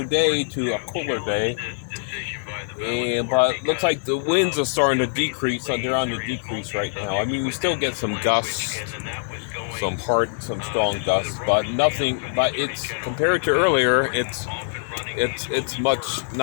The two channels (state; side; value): silent; right; 57 dB below the other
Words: day to a cooler day. But looks like the winds are starting to decrease. They're on the decrease right now. I mean, we still get some gusts, some strong gusts, but nothing. But it's compared to earlier, it's much